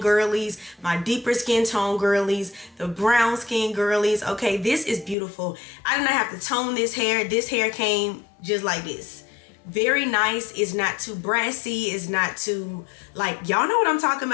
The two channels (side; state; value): right; drops out; at 5.2 s